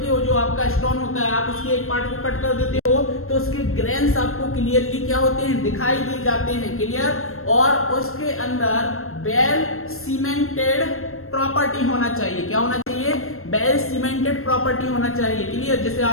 हो, जो आपका स्टोन होता है, आप उसके एक पार्ट को कट कर देते हो तो उसके ग्रेन्स आपको क्लियरली क्या होते हैं, दिखाई दे जाते हैं। क्लियर? और उसके अंदर वेल सीमेंटेड प्रॉपर्टी होना चाहिए। क्या होना चाहिए, वेल सीमेंटेड प्रॉपर्टी होना चाहिए। क्लियर? जैसे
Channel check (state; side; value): late; right; 0.62 ms